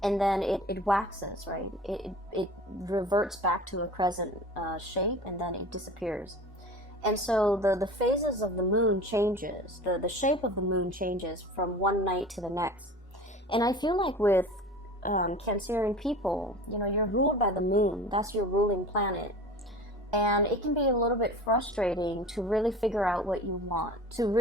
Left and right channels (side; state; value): both; normal; correlation 0.38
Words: and then it waxes, right? It reverts back to a crescent shape, and then it disappears. And so the phases of the moon changes, the shape of the moon changes from one night to the next. And I feel like with Cancerian people, you know, you're ruled by the moon. That's your ruling planet. And it can be a little bit frustrating to really figure out what you want, to